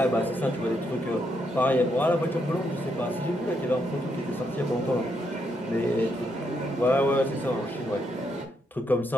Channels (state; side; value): normal; both; correlation 0.78